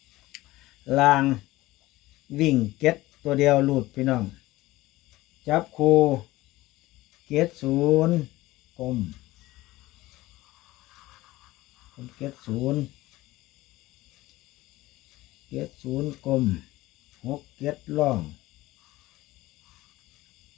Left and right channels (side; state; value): right; quieter; 18.0 dB